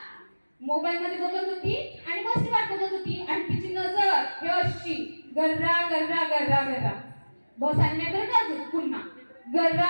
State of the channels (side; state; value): both; inverted; correlation -1.00